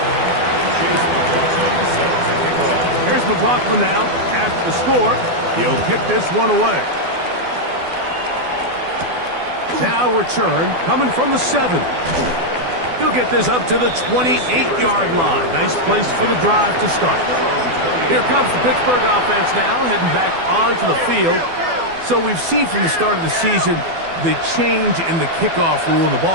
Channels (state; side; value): late; left; 12 ms